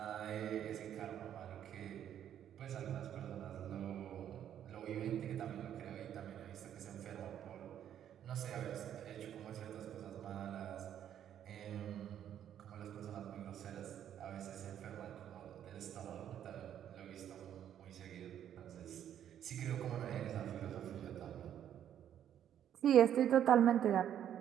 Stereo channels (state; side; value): quieter; left; 10.2 dB